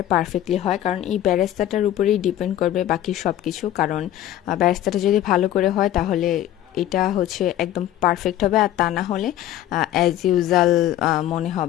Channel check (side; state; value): right; quieter; 12.6 dB